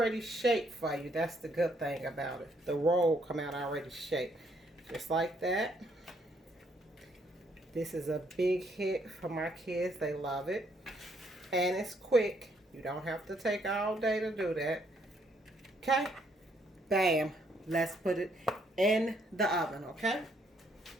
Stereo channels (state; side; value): normal; both; correlation 0.70